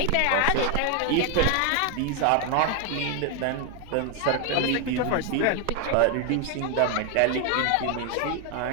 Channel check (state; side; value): different; both; correlation 0.01